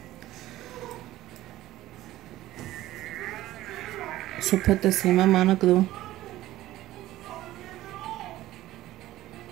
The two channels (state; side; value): quieter; left; 15.5 dB